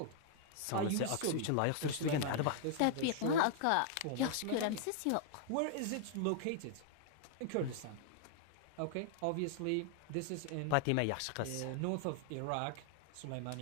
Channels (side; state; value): both; different; correlation -0.01